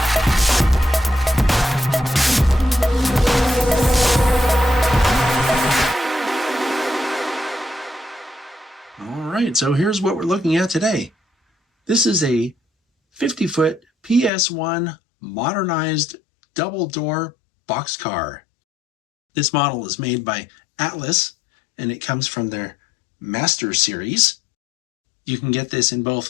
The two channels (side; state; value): right; drops out; at 14.3 s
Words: All right, so here's what we're looking at today. This is a 50-foot PS-1 modernized double-door boxcar. This model is made by Atlas, and it comes from their Master Series. You can get this in